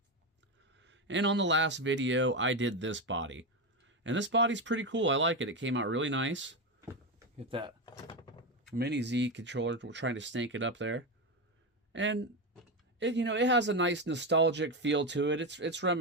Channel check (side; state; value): both; normal; correlation 0.13